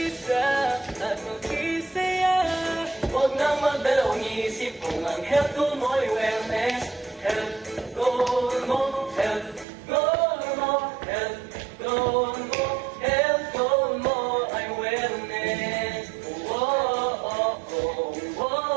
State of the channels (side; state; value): left; drops out; at 9.7 s